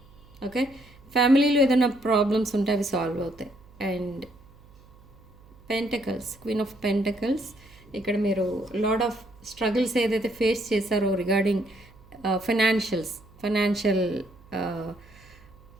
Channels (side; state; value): right; noise; hum, 25 dB below the sound